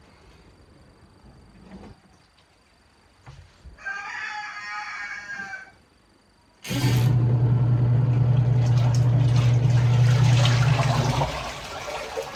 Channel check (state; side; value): identical; both; correlation 1.00